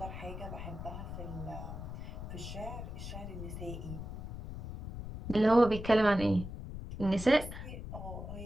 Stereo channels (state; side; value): noise; left; rumble, 8 dB below the sound